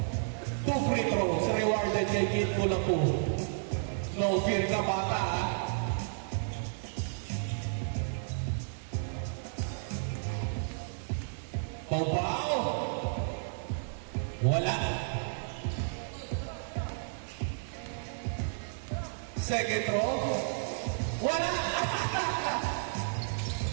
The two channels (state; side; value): silent; left; digital silence